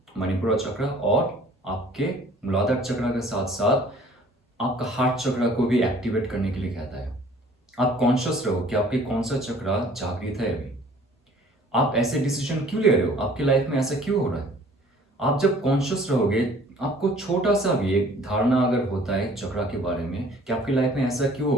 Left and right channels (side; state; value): both; normal; correlation 0.53